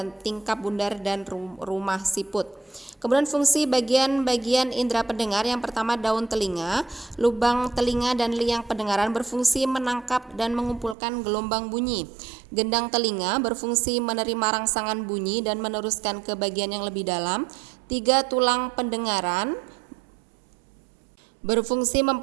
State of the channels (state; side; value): drops out; left; at 11.0 s